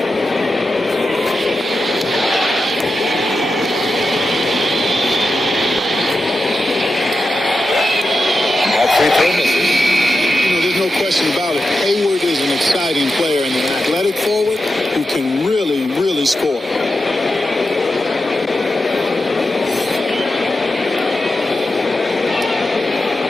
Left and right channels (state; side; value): normal; both; correlation 0.89